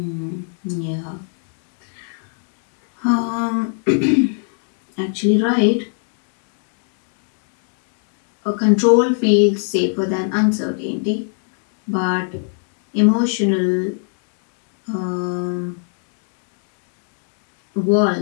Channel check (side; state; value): right; silent; 57 dB below the other